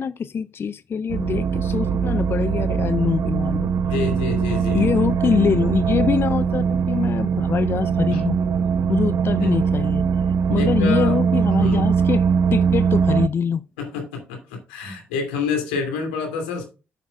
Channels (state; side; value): normal; both; correlation 0.71